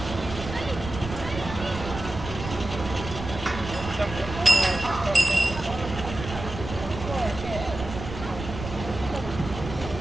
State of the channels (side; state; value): right; noise; rumble, 9 dB below the sound